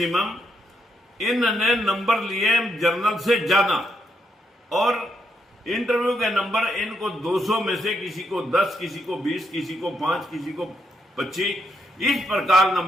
इन्होंने नंबर लिए जर्नल से ज्यादा और इंटरव्यू के नंबर इनको 200 में से किसी को 10, किसी को 20, किसी को 5, किसी को 25 इस प्रकार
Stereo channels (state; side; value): normal; both; correlation 0.78